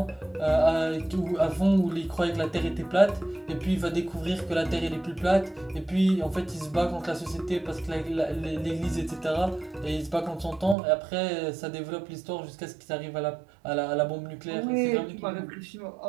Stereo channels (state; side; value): drops out; left; at 10.8 s